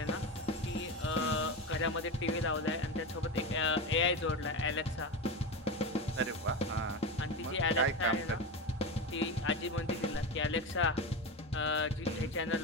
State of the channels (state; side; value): normal; both; correlation 0.20